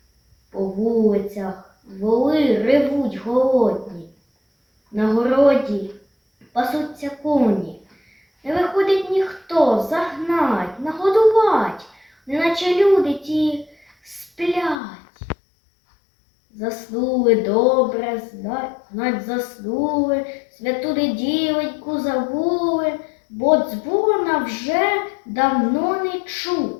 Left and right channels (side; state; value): right; drops out; at 14.8 s